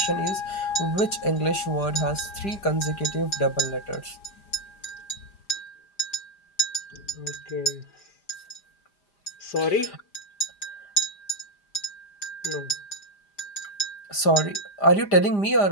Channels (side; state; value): right; late; 5.0 ms